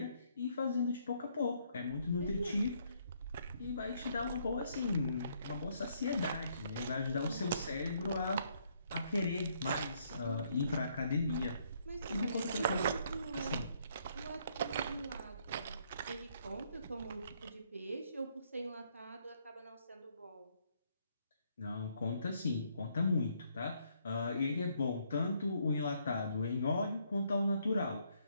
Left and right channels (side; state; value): both; inverted; correlation -0.70